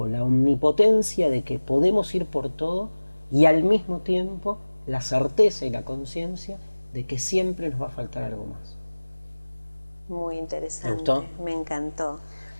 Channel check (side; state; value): both; inverted; correlation -1.00